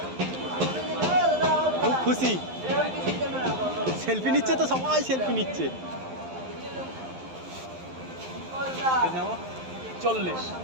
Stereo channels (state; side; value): late; left; 11 ms